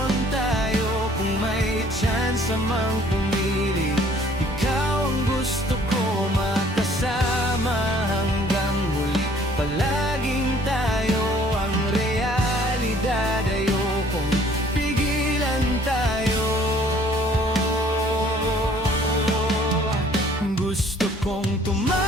tayo, kung may chance mang pumili, ikaw ang gusto ko makasama hanggang huli. Palaging tayo ang realidad, ayokong pigilan tayo. Gusto kong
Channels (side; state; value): both; normal; correlation 0.58